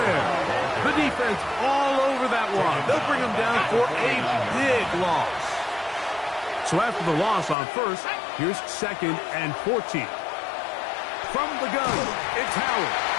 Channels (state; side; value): drops out; right; at 7.6 s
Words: The defense all over that one. They'll bring him down for a big loss. So after the loss on 1st, here's 2nd and 14. From the gun, it's Howard.